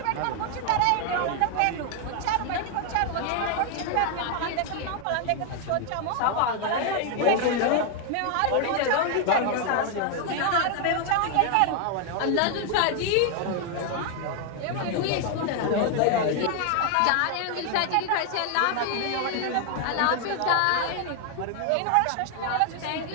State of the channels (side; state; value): both; different; correlation 0.00